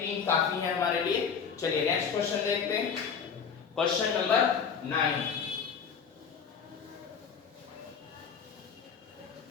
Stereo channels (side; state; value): right; quieter; 6.6 dB